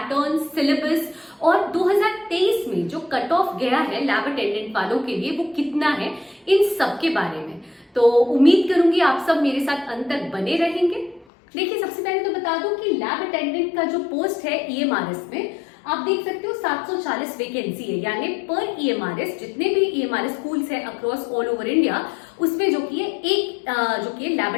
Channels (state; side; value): drops out; right; at 11.2 s